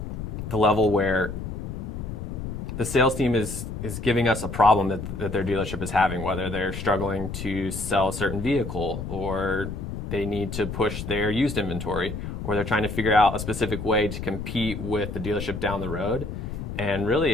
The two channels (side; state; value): left; noise; rumble, 6 dB below the sound